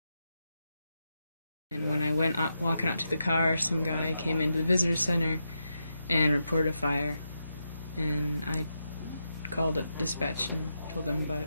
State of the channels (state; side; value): inverted; both; correlation -0.86